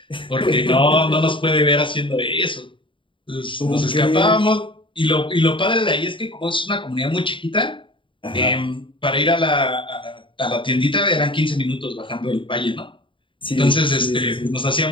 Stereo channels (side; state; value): right; late; 0.24 ms